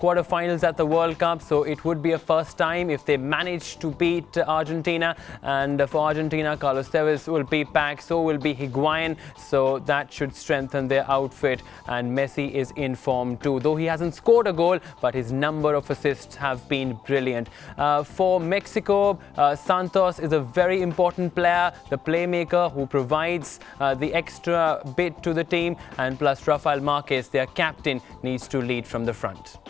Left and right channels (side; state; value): right; quieter; 7.6 dB